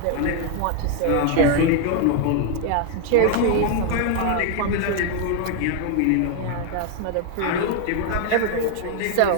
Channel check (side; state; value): both; different; correlation 0.00